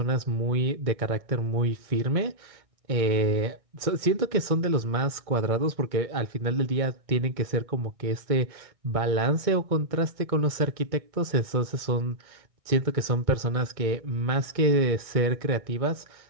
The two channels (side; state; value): left; late; 1.6 ms